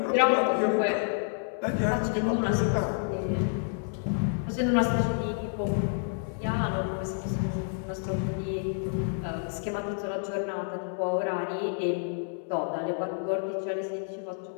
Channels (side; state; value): right; silent; 58 dB below the other